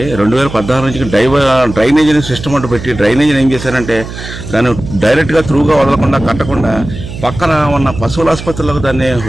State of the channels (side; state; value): right; noise; hum, 11 dB below the sound